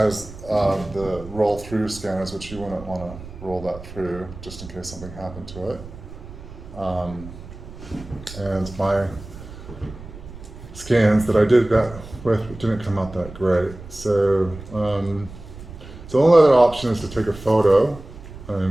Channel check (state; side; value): noise; right; rumble, 15 dB below the sound